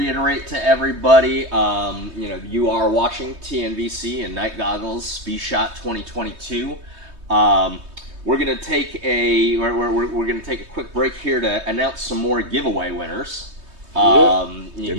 to everybody, you are watching TNVC and Night Goggles vSHOTT 2022. We're gonna take a quick break here to announce some more giveaway winners.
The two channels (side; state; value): left; late; 3.2 ms